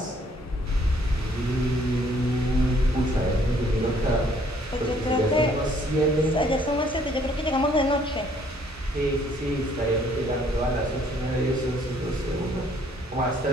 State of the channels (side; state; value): both; normal; correlation 0.63